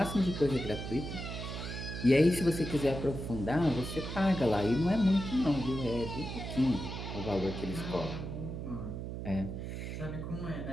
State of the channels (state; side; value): noise; right; hum, 6 dB below the sound